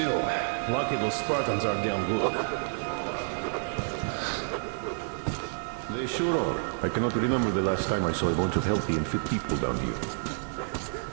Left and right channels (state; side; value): silent; left; digital silence